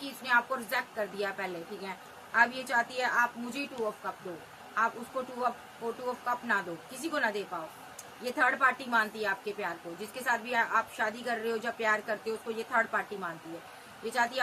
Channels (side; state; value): both; identical; correlation 1.00